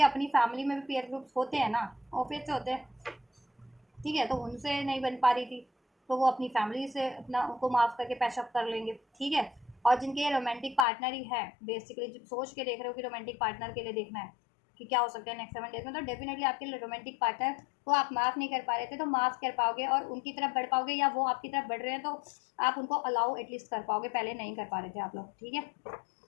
अपनी फैमिली में भी पीयर ग्रुप्स होते हैं ना, ऑफिस से होते हैं, ठीक है, तो उनसे नहीं बन पा रही थी, तो वो अपनी फैमिली से अपना उनको माफ़ करके पैचअप कर लेंगे, ठीक है। और जिनके ये रोमांटिक पार्टनर ही है, बेसिकली जब सोच के देख रहे हो कि रोमांटिक पार्टनर के लिए देखना है कि क्या हो सकता है नेक्स्ट 7 डेज में, तो डेफिनेटली आपके लिए रोमांटिक पार्टनर को आप माफ़ नहीं कर पा रहे थे, तो माफ़ कर पाओगे, और उनकी तरफ बढ़ पाओगे, या वो आपकी तरफ बढ़ रहे हैं, तो आप उनको अलाउ एटलीस्ट कर पाओगे, पहले नहीं कर पा रहे थे आप लोग, ठीक है,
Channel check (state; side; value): drops out; right; at 10.9 s